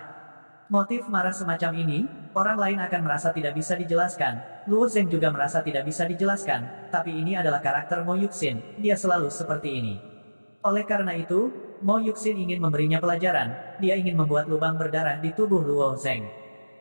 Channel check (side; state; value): both; inverted; correlation -1.00